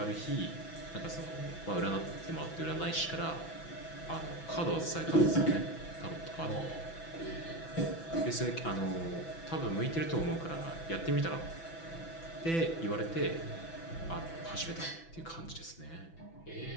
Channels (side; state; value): right; late; 6.0 ms